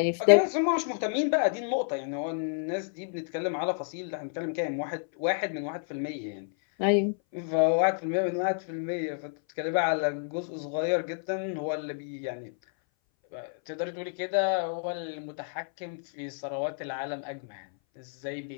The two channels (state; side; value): silent; right; 57 dB below the other